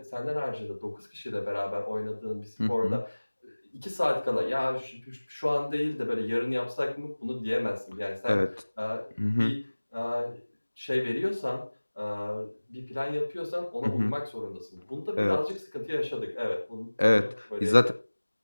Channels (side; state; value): both; inverted; correlation -1.00